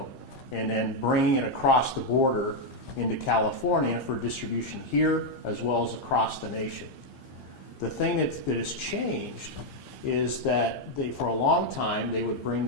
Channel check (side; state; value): right; late; 15 ms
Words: and then bringing it across the border into California for distribution here as well as across the nation. The thing that has changed is that for a long time, they would bring